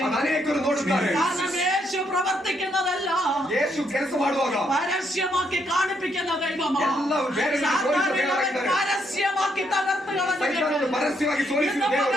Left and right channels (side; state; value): both; normal; correlation 0.74